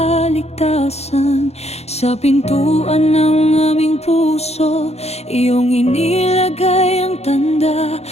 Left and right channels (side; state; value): right; late; 0.31 ms